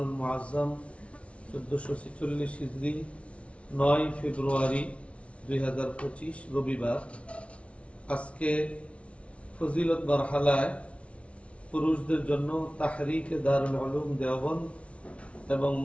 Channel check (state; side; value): late; right; 0.062 ms